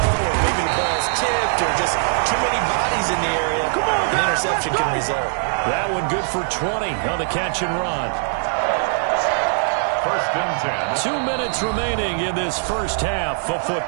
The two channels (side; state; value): left; silent; 60 dB below the other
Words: maybe the ball's tipped, or just too many bodies in the area, an interception can result. That one good for 20 on the catch and run. First and 10. 2 minutes remaining in this first half of